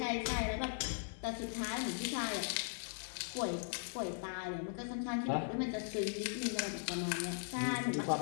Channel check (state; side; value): silent; right; digital silence